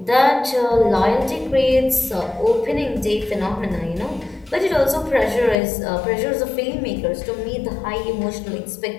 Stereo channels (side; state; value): right; drops out; at 5.6 s